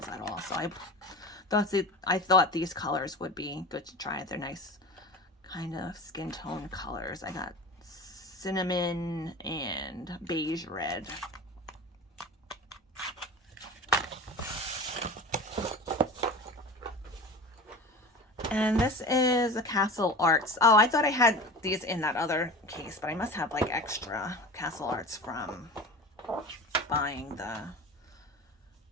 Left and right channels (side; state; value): both; normal; correlation 0.33